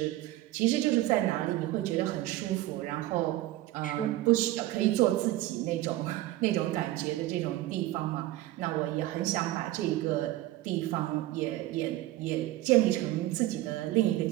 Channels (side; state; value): left; quieter; 15.9 dB